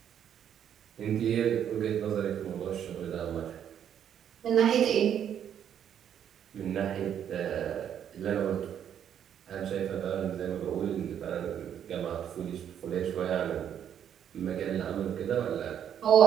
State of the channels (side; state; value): left; quieter; 9.3 dB